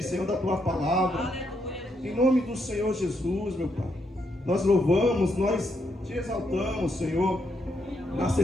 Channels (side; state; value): both; normal; correlation 0.78